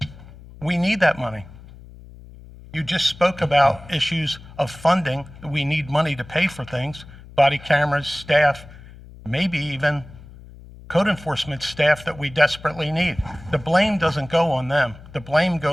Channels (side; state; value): left; noise; hum, 19 dB below the sound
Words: We need that money. You just spoke about issues of funding. We need money to pay for things, body cameras, staff, maybe even code enforcement staff that we desperately need. The blame doesn't go on them. The blame